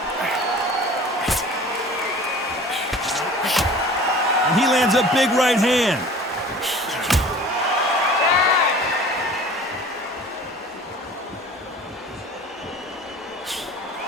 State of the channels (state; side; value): normal; both; correlation 0.44